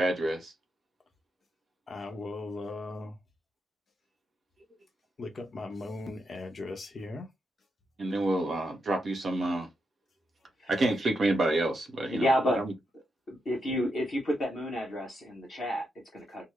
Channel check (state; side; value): normal; both; correlation 0.83